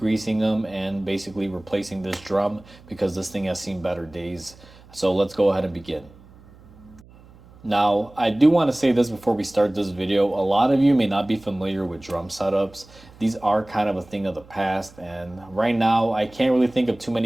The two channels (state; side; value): noise; right; hum, 24 dB below the sound